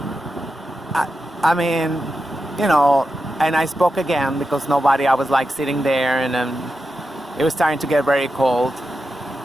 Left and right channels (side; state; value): both; normal; correlation 0.89